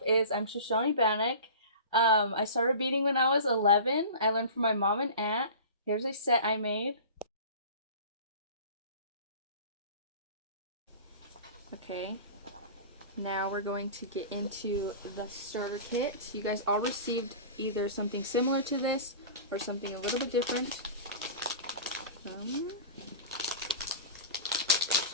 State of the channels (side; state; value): both; inverted; correlation -0.36